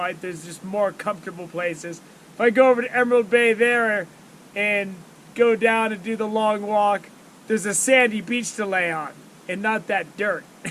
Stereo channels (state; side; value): identical; both; correlation 1.00